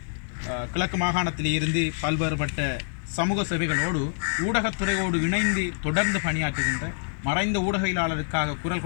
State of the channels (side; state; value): right; silent; 58 dB below the other